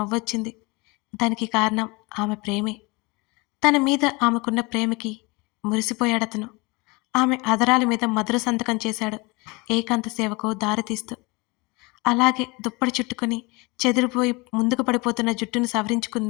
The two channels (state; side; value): quieter; right; 26.4 dB